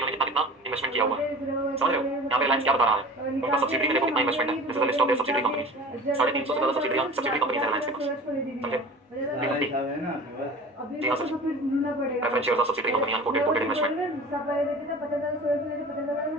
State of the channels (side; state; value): both; normal; correlation 0.39